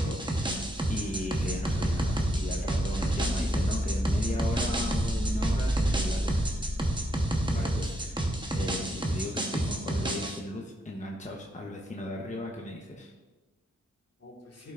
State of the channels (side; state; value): both; normal; correlation 0.79